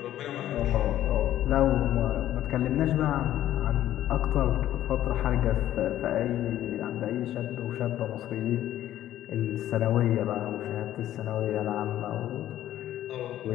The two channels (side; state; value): right; quieter; 12.8 dB